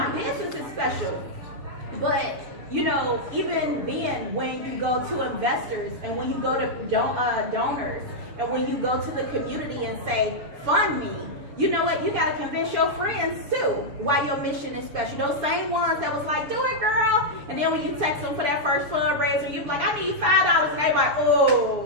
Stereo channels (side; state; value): left; late; 6.9 ms